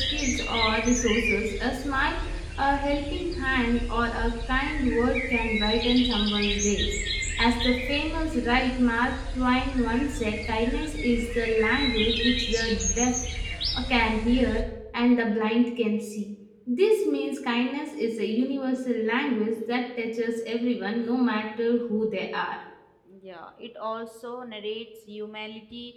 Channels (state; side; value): identical; both; correlation 1.00